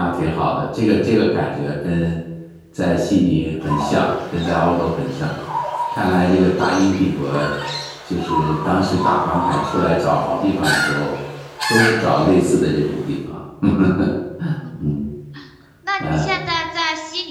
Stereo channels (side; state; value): both; identical; correlation 1.00